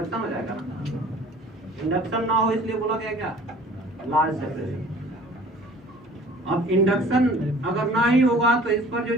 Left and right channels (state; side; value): normal; both; correlation 0.49